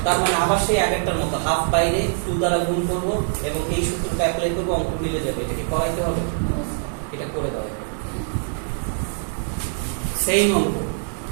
তার মানে আবার সেই আগেরটার মতো হাফ বাইরে 2 দ্বারা গুণ করব এবং এই সূত্রটা অ্যাপ্লাই করব, অঙ্ক মিলে যাবে। এটা কি করাইতে হবে, এটা করে দাও, সেই অঙ্ক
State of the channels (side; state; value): left; silent; digital silence